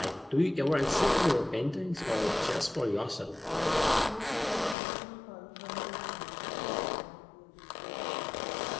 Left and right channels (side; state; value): right; drops out; at 4.8 s